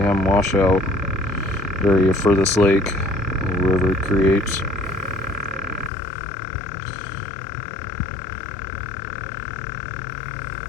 washout area for this lake, the river it creates.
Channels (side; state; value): right; drops out; at 5.9 s